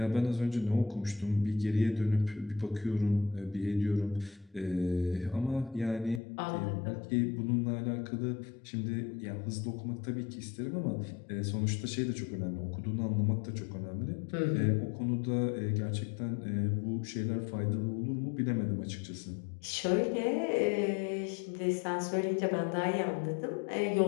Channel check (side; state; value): right; drops out; at 6.2 s